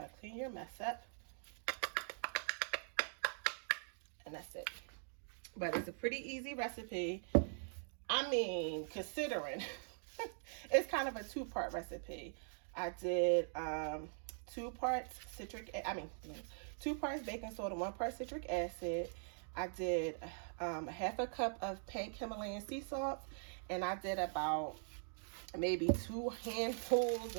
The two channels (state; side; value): silent; left; digital silence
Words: clean your mess up, and that's it. But it's a pretty easy recipe. I mean, considering it's kind of a two-part recipe. I did 2 parts baking soda, 1 part citric acid. I did half a cup of pink Himalayan sea salt, and I did about maybe 2 handfuls